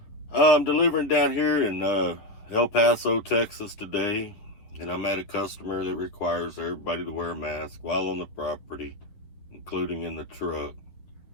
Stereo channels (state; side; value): late; right; 10 ms